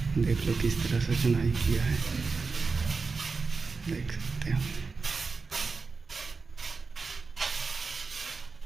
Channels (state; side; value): quieter; left; 4.5 dB